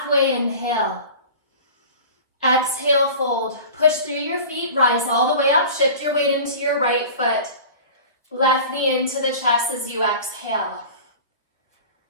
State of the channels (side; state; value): both; inverted; correlation -0.38